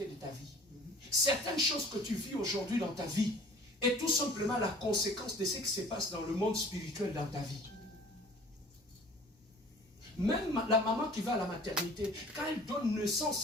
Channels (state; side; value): normal; both; correlation 0.48